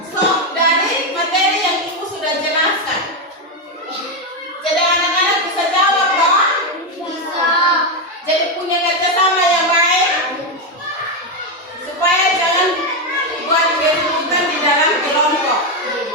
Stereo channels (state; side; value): normal; both; correlation 0.07